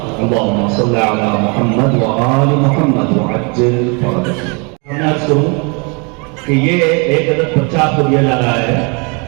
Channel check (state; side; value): quieter; left; 32.7 dB